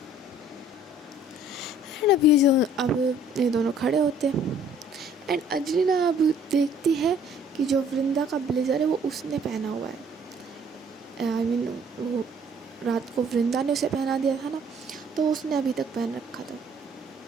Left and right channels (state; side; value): normal; both; correlation 0.57